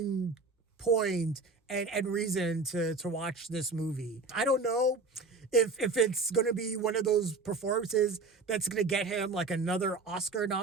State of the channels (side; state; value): left; quieter; 3.9 dB